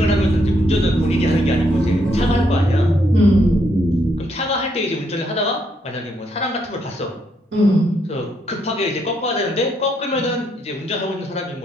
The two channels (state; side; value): normal; both; correlation 0.75